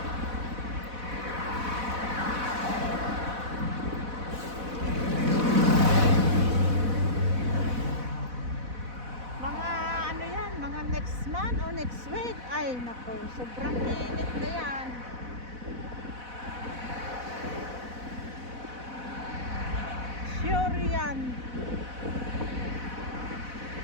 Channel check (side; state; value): left; late; 4.1 ms